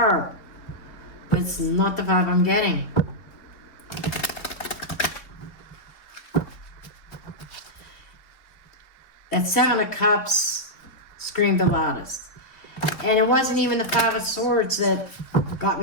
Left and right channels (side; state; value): right; late; 3.9 ms